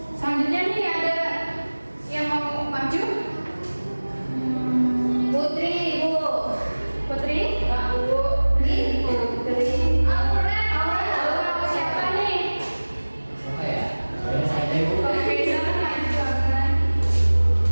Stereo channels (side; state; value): both; inverted; correlation -1.00